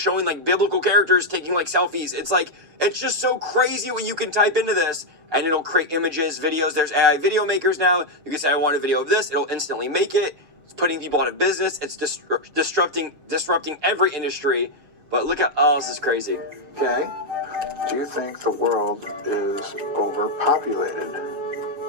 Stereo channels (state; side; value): late; left; 6.7 ms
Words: like biblical characters taking like selfies. It's like, it's just so crazy what you can type into this, and it'll create images, videos. There's AI video makers now. You can say, I want a video of this. It'll instantly make it. It's putting people out of business. It's disrupting every industry. But look at, oh, this is crazy. Okay. Do you think the world is overpopulated?